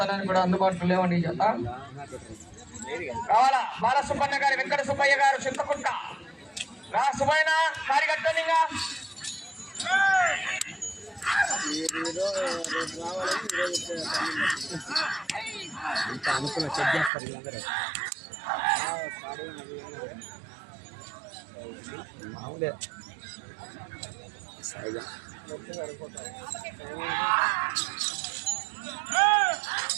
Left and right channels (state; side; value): drops out; left; at 17.1 s